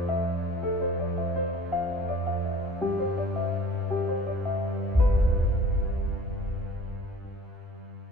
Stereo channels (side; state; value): both; normal; correlation 0.47